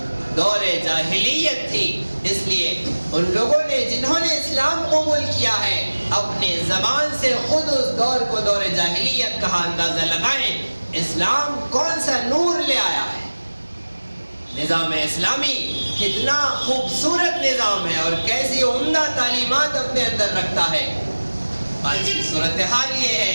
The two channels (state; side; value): inverted; both; correlation -1.00